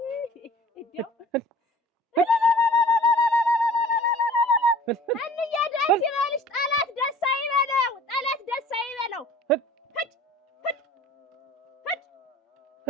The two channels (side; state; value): both; normal; correlation 0.47